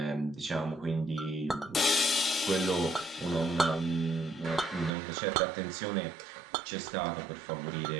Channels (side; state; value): left; drops out; at 4.9 s